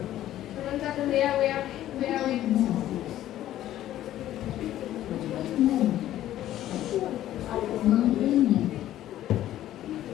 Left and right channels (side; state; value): right; quieter; 13.1 dB